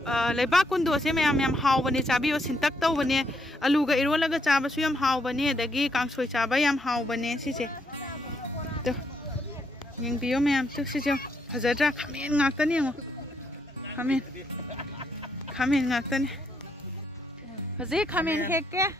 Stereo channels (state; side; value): normal; both; correlation 0.76